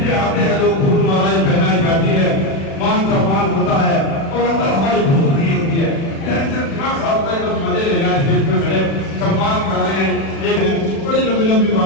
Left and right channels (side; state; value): right; late; 36 ms